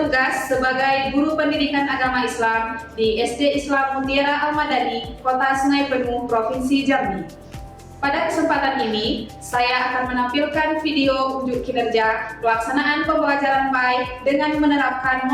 sebagai guru pendidikan agama Islam di SD Islam Mutiara Al-Madani, Kota Sungai Penuh, Provinsi Jambi. Pada kesempatan ini, saya akan menampilkan video unjuk kinerja pelaksanaan pembelajaran baik dengan menerapkan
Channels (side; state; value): both; identical; correlation 1.00